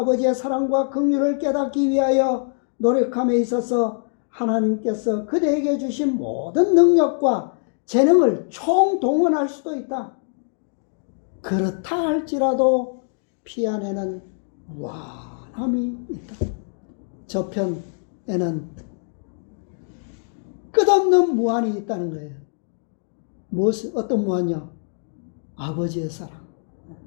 사랑과 긍휼을 깨닫기 위하여 노력함에 있어서 하나님께서 그대에게 주신 모든 능력과 재능을 총동원할 수도 있다. 그렇다 할지라도 피 안에는 무한함이 있다. 저편에는 끝없는 무한이 있다는 거예요. 어떤 무한이요? 아버지의 사랑.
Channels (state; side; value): silent; right; digital silence